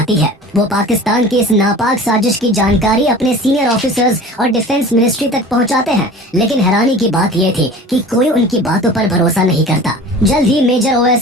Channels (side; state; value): both; normal; correlation 0.40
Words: है। वो पाकिस्तान की इस नापाक साजिश की जानकारी अपने सीनियर ऑफिसर्स और डिफेंस मिनिस्ट्री तक पहुंचाते हैं, लेकिन हैरानी की बात ये थी कि कोई उनकी बातों पर भरोसा नहीं करता। जल्द ही मेजर